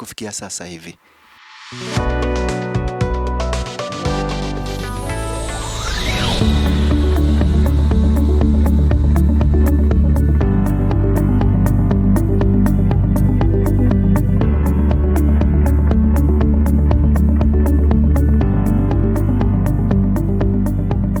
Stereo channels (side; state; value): both; identical; correlation 1.00